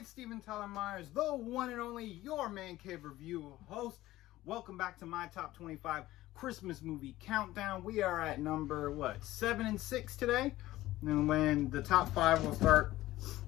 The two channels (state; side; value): quieter; right; 16.3 dB